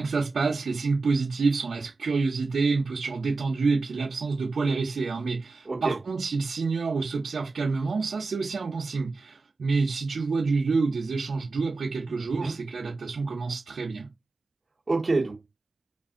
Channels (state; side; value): quieter; left; 3.8 dB